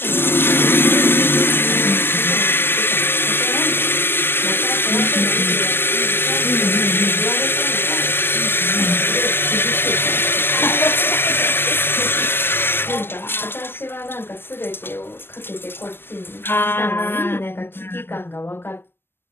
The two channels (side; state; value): right; late; 0.11 ms